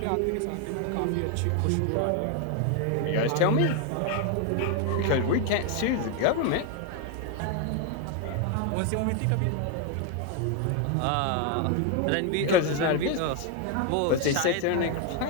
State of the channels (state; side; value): different; both; correlation 0.01